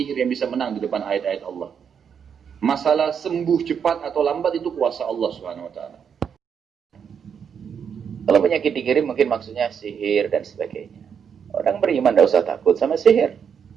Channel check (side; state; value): left; quieter; 7.3 dB